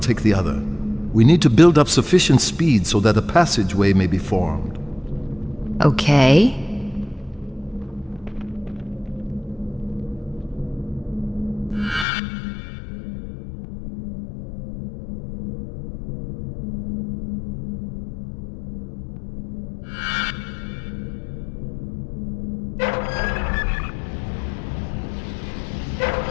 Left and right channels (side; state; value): right; drops out; at 12.1 s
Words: the other. We need to build up sufficient speed so that a passageway may be formed. Okay.